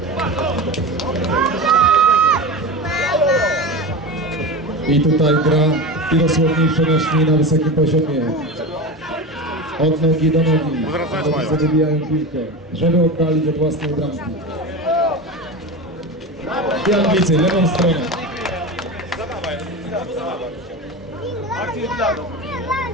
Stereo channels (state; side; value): normal; both; correlation 0.26